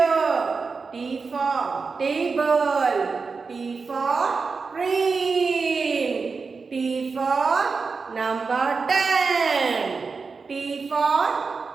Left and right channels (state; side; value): quieter; left; 4.7 dB